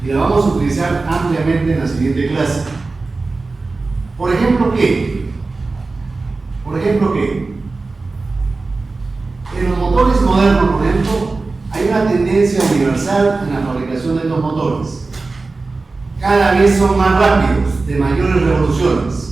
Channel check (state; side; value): quieter; left; 3.7 dB